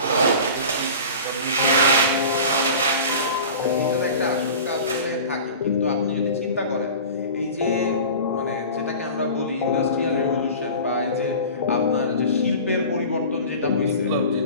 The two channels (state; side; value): inverted; both; correlation -0.38